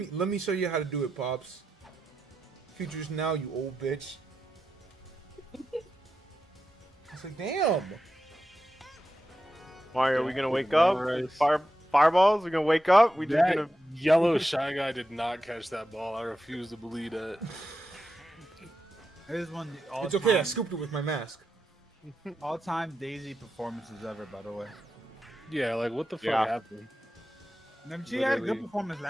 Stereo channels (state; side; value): normal; both; correlation 0.89